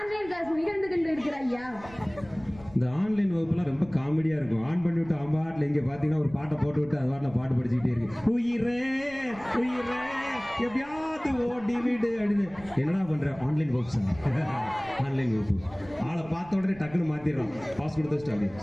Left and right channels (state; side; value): noise; right; rumble, 20 dB below the sound